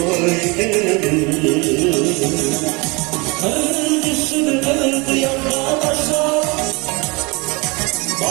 Kır düşünü kırdı yanlarlaşa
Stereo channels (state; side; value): quieter; left; 27.5 dB